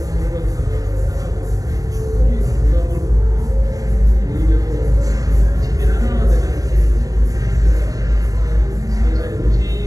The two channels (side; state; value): left; late; 0.17 ms